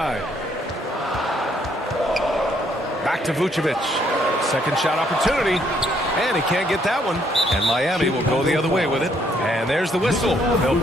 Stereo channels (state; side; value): normal; both; correlation 0.69